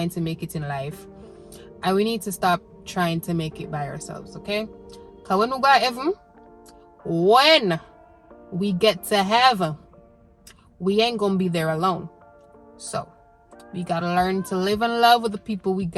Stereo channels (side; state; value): both; identical; correlation 1.00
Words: to make it in life, and we need to stop trying to make it by ourselves, okay? Because when we go to heaven, when we get to heaven, we ain't gonna be there alone. So we gotta learn to live in love with the people we